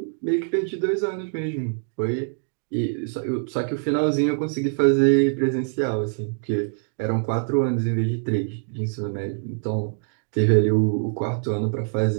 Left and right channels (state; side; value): silent; left; 62 dB below the other